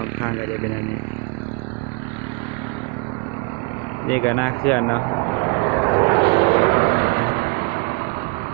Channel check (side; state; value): left; quieter; 32.2 dB